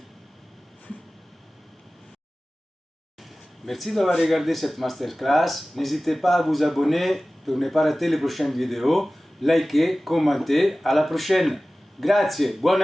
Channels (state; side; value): normal; both; correlation 0.97